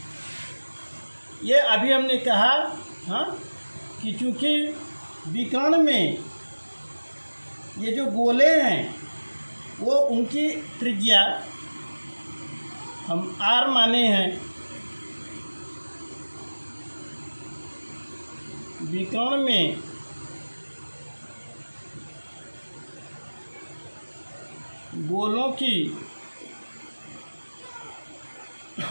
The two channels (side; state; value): both; inverted; correlation -1.00